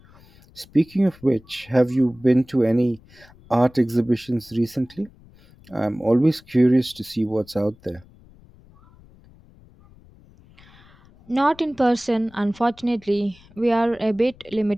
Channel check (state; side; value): noise; left; rumble, 26 dB below the sound